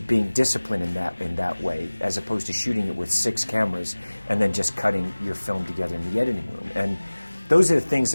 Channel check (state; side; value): inverted; both; correlation -1.00